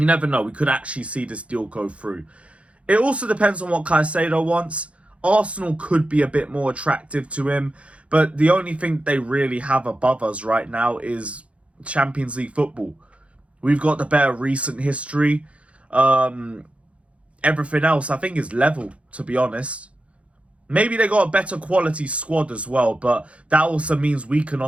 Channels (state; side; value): late; left; 0.062 ms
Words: never know, we could actually see this deal go through. It also depends on what Caicedo wants. Arsenal could be a bit more attractive to him, but the only thing they really have above us right now is Champions League football. We've got the better recent history. Everything else I think is level, to be honest. Maybe they got a better quality squad as well, but that also means we can